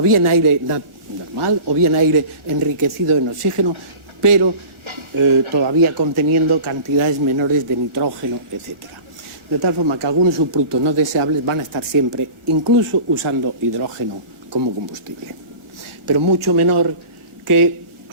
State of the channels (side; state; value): left; late; 1.4 ms